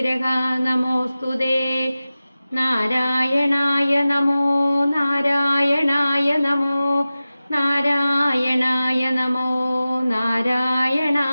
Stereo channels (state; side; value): inverted; both; correlation -0.96